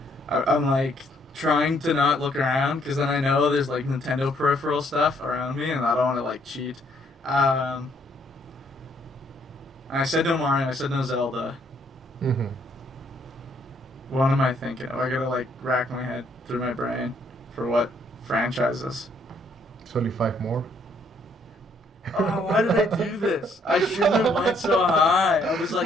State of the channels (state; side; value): normal; both; correlation 0.68